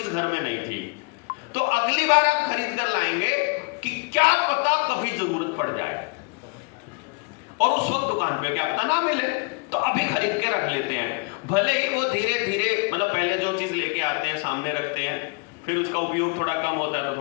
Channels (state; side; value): quieter; right; 30.2 dB